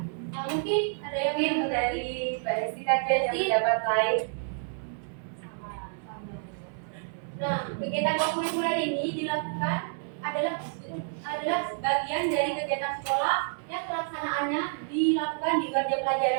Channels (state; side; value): silent; left; 59 dB below the other